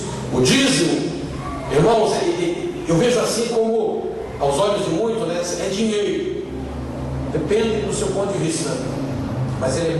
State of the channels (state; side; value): identical; both; correlation 1.00